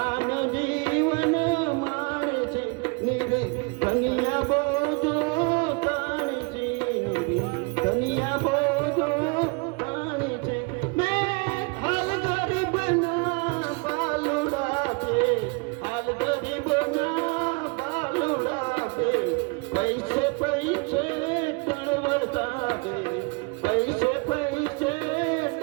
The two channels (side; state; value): left; quieter; 31.2 dB